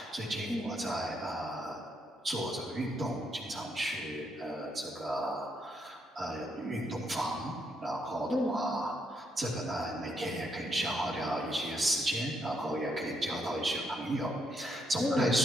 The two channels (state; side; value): normal; both; correlation 0.76